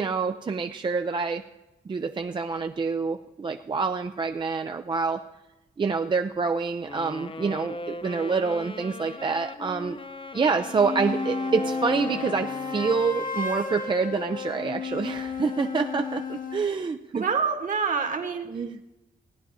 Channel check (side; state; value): left; quieter; 3.5 dB